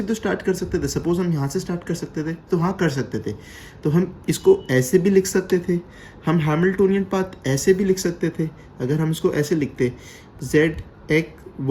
तो स्टार्ट कर सकते थे। सपोज हम यहाँ से स्टार्ट कर सकते थे, तो हाँ कर सकते थे, तो हम इसको ऐसे भी लिख सकते थे। हम हैमिल्टोनियन पाथ ऐसे भी लिख सकते थे। अगर हम इसको ऐसे लिखते ZX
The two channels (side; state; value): both; identical; correlation 1.00